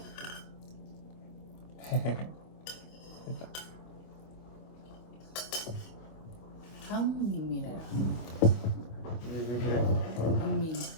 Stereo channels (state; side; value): late; right; 25 ms